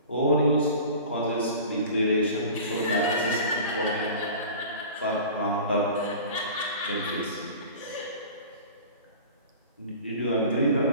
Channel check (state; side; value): inverted; both; correlation -0.39